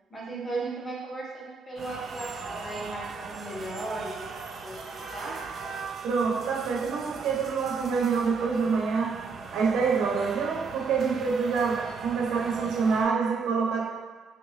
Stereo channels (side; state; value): left; quieter; 4.9 dB